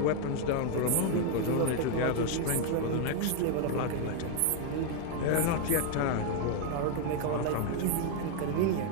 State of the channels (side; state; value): both; different; correlation 0.01